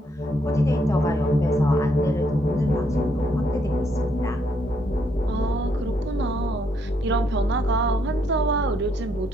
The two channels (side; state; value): both; normal; correlation 0.73